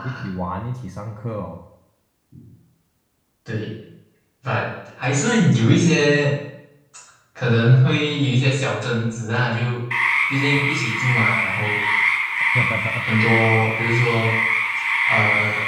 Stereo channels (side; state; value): both; identical; correlation 1.00